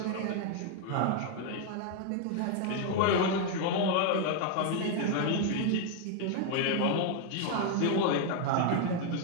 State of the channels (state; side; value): different; both; correlation 0.00